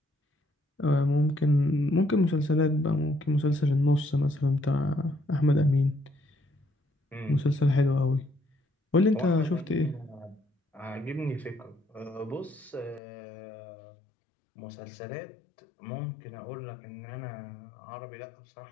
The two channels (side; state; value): right; drops out; at 13.0 s